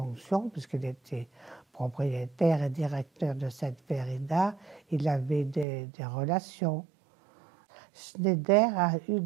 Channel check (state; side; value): drops out; left; at 5.7 s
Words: puisqu'il était propriétaire et directeur de cette vérida, il avait des relations. Schneider a eu